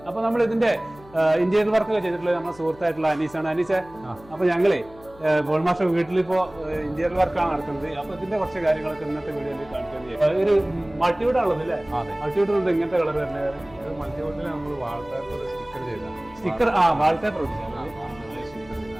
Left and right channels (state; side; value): noise; left; hum, 23 dB below the sound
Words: അപ്പൊ നമ്മൾ ഇതിന്റെ ഇന്റീരിയർ വർക്ക് ഒക്കെ ചെയ്തിട്ടുള്ളത് നമ്മുടെ സുഹൃത്തായിട്ടുള്ള അനീസാണ്. അനീസെ, അപ്പൊ ഞങ്ങളെ പോൾ മാസ്റ്റർ വീട്ടിലിപ്പോ ഇന്റീരിയർ വർക്കാണ് നടക്കുന്നത്. അപ്പൊ ഇതിന്റെ കുറച്ച് കാര്യങ്ങളൊക്കെ ഇന്നത്തെ വീഡിയോയിൽ കാണിക്കുന്നത്. ഒരു മൾട്ടിവുഡ് ആണുള്ളത് അല്ലേ? മൾട്ടിവുഡ് ഉണ്ട്. ഇങ്ങനത്തെ കളർ തന്നെ മൾട്ടിവുഡിൽ നമ്മൾ വാൾപേപ്പർ സ്റ്റിക്കർ ചെയ്താണ്. സ്റ്റിക്കർ വാൾപേപ്പർ